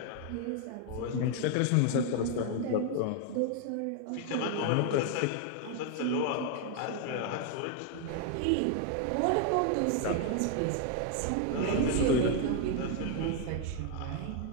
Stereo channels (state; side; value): different; both; correlation 0.00